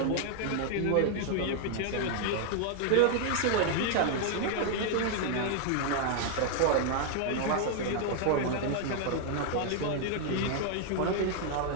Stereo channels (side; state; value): both; different; correlation 0.00